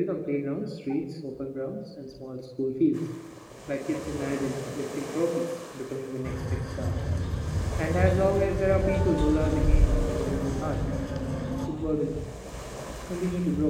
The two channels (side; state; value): both; identical; correlation 1.00